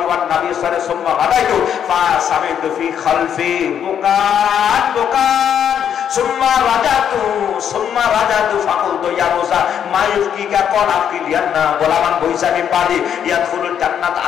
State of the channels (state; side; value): quieter; right; 8.8 dB